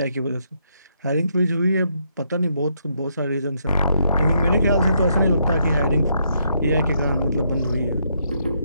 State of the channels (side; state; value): both; inverted; correlation -0.76